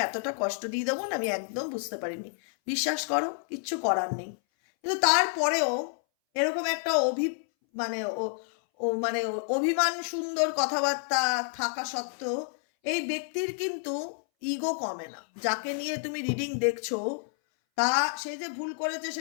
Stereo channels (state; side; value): silent; right; 59 dB below the other